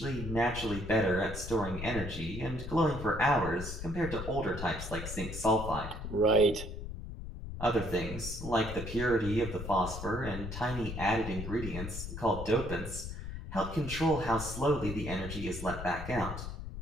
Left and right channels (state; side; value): noise; left; rumble, 8 dB below the sound